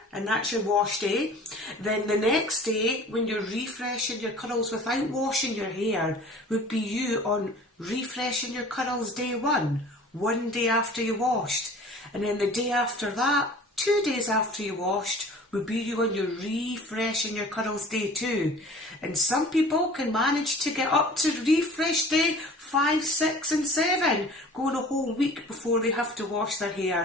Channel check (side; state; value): both; normal; correlation 0.45